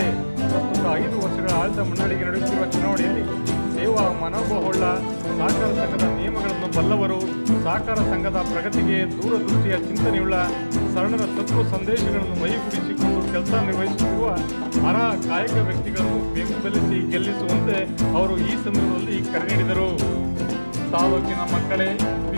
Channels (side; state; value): both; inverted; correlation -1.00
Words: ಪ್ರಸ್ತುತ 5 ವರ್ಷಗಳ ಆಡಳಿತ ಮಂಡಳಿಗೆ ನಡೆಯುತ್ತಿರುವ ಚುನಾವಣೆಯಲ್ಲಿ ಸೇವಾ ಮನೋಭಾವವುಳ್ಳ ಸಹಕಾರ ಸಂಘದ ನಿಯಮಗಳನ್ನು ಬಲ್ಲವರು, ಸಹಕಾರ ಸಂಘದ ಪ್ರಗತಿಗೆ ದೂರದೃಷ್ಟಿಯ ಚಿಂತನೆಯುಳ್ಳ ಶರಣರ ತತ್ವ ಸಂದೇಶಗಳನ್ನು ಮೈಗೂಡಿಸಿಕೊಂಡು ಕೆಲಸ ನಿರ್ವಹಿಸುತ್ತಿರುವ ಅರ್ಹ ಕಾಯಕ ವ್ಯಕ್ತಿಗಳನ್ನು ಬೆಂಬಲಿಸಿ ಗೆಲ್ಲಿಸುವಂತೆ ಅವರು ಈ ಸಂದರ್ಭದಲ್ಲಿ ಕರೆ ನೀಡಿದರು. ತಾಲೂಕಿನ ಮಕ್ಕಳೇ